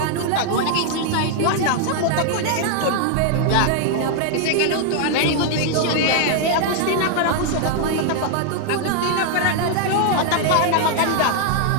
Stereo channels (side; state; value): both; different; correlation 0.00